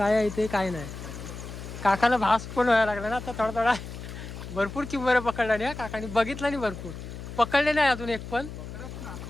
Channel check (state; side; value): noise; left; hum, 10 dB below the sound